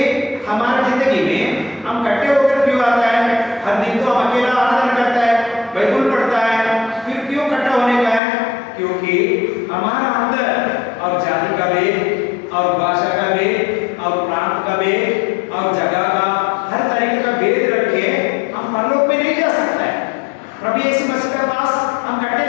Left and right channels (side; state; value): right; drops out; at 8.2 s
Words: हमारा जिंदगी में हम इकट्ठे होकर क्यों आता है? हर दिन तो हम अकेला आराधना करता है, बाइबल पढ़ता है, फिर क्यों इकट्ठा होने का है? क्योंकि हमारा अंदर और जाति का भेद और भाषा का भेद और प्रांत का भेद और जगह का हर तरीके का भेद रख के हम परलोक में नहीं जा सकता है। प्रभु यीशु मसीह के पास हम इकट्ठे